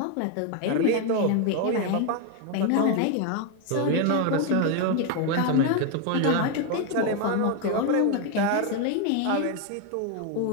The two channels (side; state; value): both; different; correlation 0.01